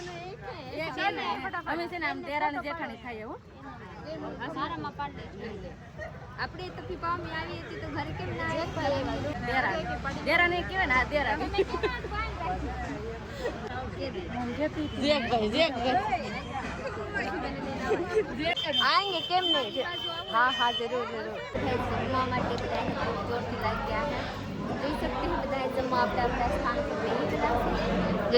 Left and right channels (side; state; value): both; identical; correlation 1.00